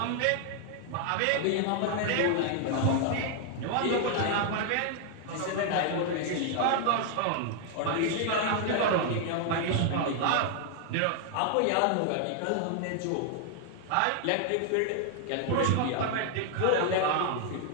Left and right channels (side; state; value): both; different; correlation 0.00